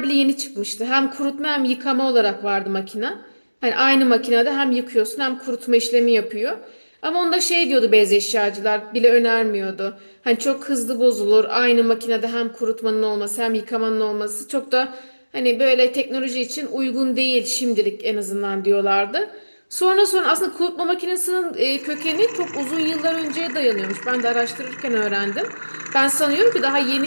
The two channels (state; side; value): inverted; both; correlation -1.00